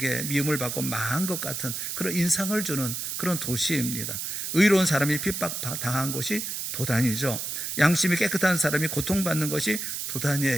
미움을 받고 망한 것 같은 그런 인상을 주는 그런 도시입니다. 의로운 사람이 핍박당한 곳이 도단이죠. 양심이 깨끗한 사람이 고통받는 것이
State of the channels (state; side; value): noise; right; hiss, 4 dB below the sound